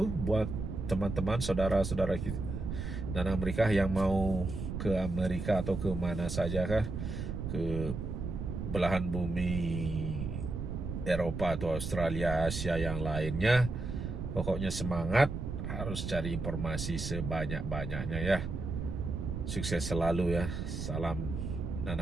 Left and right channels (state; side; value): noise; right; rumble, 5 dB below the sound